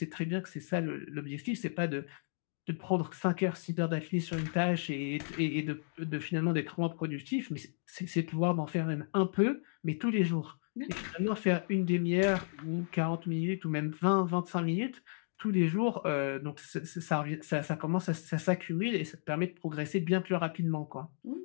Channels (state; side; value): silent; right; digital silence